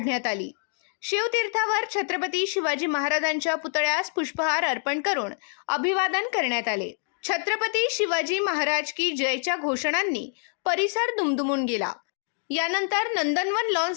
आली। शिवतीर्थावर छत्रपती शिवाजी महाराजांच्या पुतळ्यास पुष्पहार अर्पण करून अभिवादन करण्यात आले। छत्रपती शिवाजी महाराज की जयच्या घोषणांनी परिसर दुमदुमून गेला। यानंतर नंदनवन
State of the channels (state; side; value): silent; right; 59 dB below the other